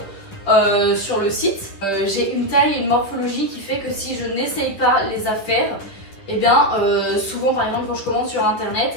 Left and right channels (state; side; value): late; right; 9.9 ms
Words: sur le site. J'ai une taille et une morphologie qui fait que si je n'essaye pas les affaires, et bien souvent par exemple quand je commande sur